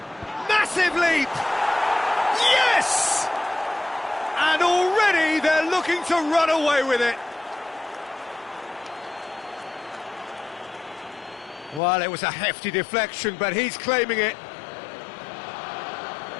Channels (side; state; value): right; drops out; at 11.8 s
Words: Massive leap! Yes! And already they're looking to run away with it. Well, it was a hefty deflection, but he's claiming it.